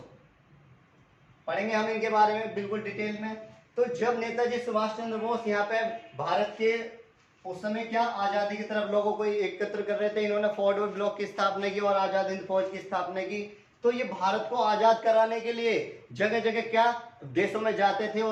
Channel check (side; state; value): both; identical; correlation 1.00